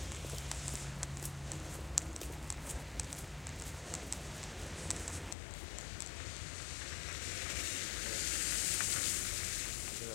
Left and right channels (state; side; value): drops out; right; at 5.4 s